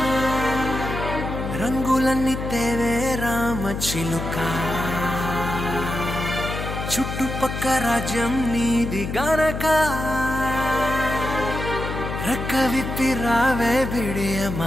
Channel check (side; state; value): left; noise; hum, 5 dB below the sound